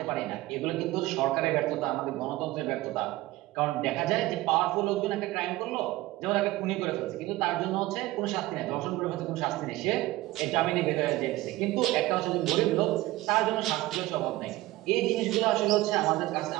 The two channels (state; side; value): quieter; left; 18.0 dB